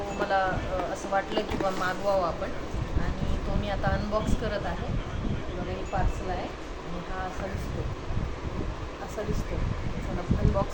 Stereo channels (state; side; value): identical; both; correlation 1.00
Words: मला असं वाटलं की बा मागवावं आपण, आणि तो मी आता अनबॉक्स करत आहे. बघा, हे पार्सल आहे आणि हा असा दिसतो. चला